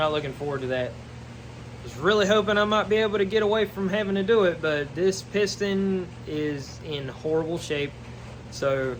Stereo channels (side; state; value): both; identical; correlation 1.00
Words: looking forward to that. I was really hoping I might be able to get away from having to do it, but this piston is in horrible shape. So